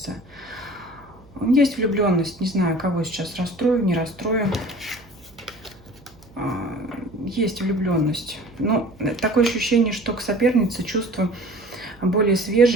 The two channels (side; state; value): right; noise; hum, 26 dB below the sound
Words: Есть влюбленность, не знаю, кого сейчас расстрою, не расстрою. Есть влюбленность. Но такое ощущение, что к сопернице чувства более